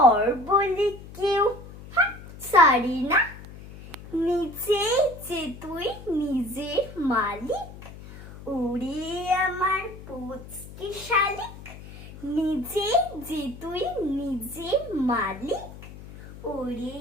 বলে কেউ ছাড়ি না। নিজেই যে তুই নিজের মালিক, ওরে আমার পুচকে শালিক। নিজেই যে তুই নিজের মালিক, ওরে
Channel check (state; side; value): noise; left; hum, 15 dB below the sound